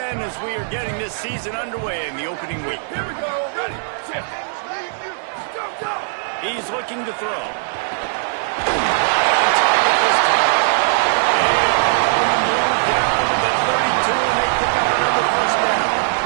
as we are getting this season underway in the opening week. Here we go, ready, set, go. He's looking to throw.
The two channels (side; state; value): left; silent; digital silence